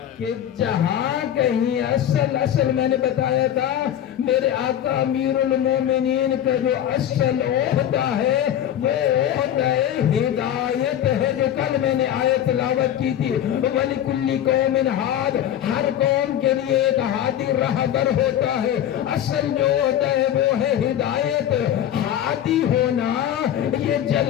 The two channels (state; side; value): quieter; right; 10.8 dB